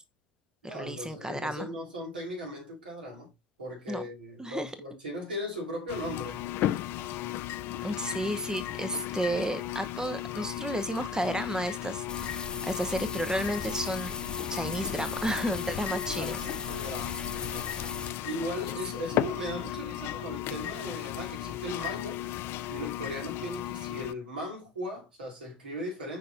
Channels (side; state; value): right; quieter; 3.2 dB